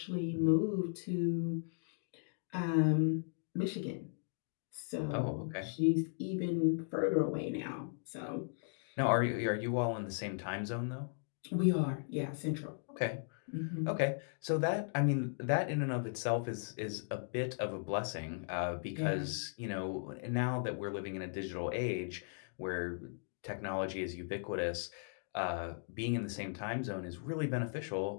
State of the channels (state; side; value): silent; right; digital silence